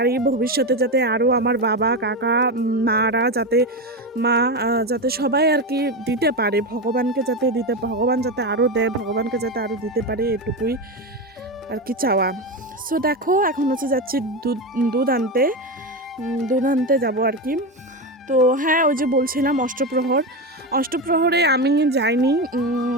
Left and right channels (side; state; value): both; normal; correlation 0.16